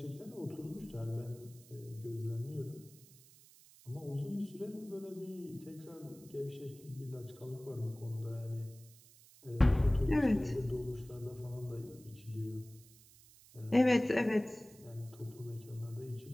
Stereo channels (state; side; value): noise; right; hiss, 23 dB below the sound